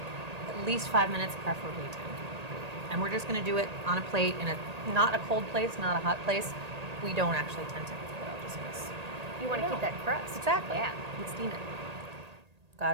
At least 5 minutes, preferably 10. And we're just going to do it on a plate in not a cold place, not a hot place. We don't actually tend to oil just because you want to keep that crust. Exactly. Yeah. We steam it. Got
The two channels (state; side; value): late; left; 1.8 ms